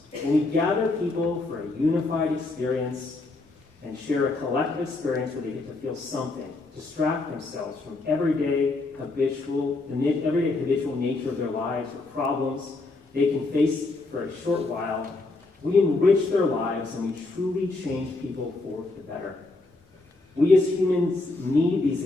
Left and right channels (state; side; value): quieter; right; 3.3 dB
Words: and we gather people for a unified experience and share a collective experience where they get to feel something, distract themselves from everyday habitual nature of their lives or problems they can face for a short while. We enrich their lives and we truly change people for the better. We as humans need these